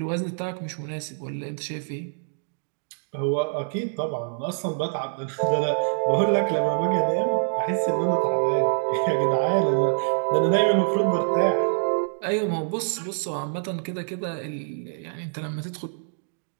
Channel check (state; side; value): silent; left; digital silence